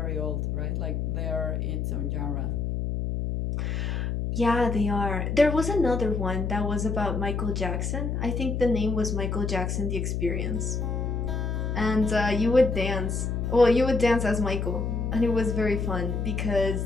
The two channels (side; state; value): left; noise; hum, 1 dB below the sound